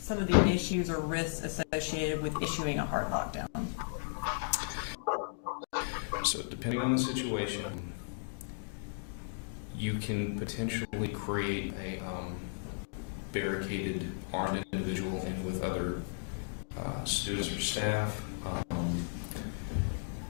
of the issues or risks associated with issuing a hard lockdown? So depending on the situation, you can potentially create a barricaded armed individual in with other students or staff.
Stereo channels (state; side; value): silent; right; digital silence